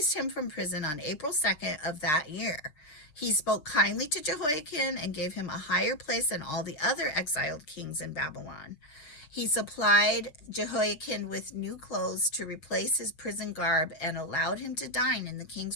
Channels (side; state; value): right; late; 6.7 ms